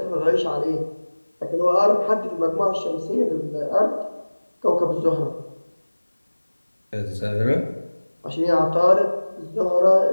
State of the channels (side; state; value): both; inverted; correlation -1.00